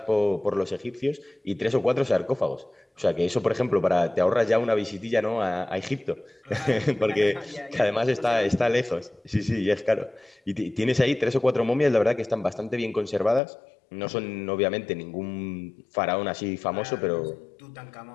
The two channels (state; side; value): drops out; right; at 13.4 s